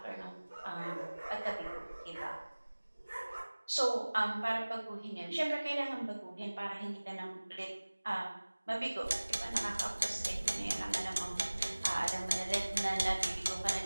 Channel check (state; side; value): inverted; both; correlation -1.00